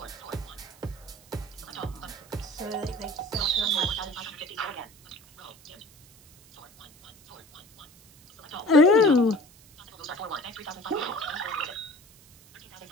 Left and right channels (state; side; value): noise; right; hiss, 25 dB below the sound